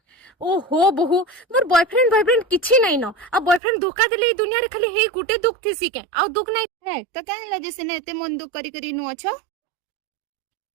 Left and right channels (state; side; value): drops out; left; at 3.6 s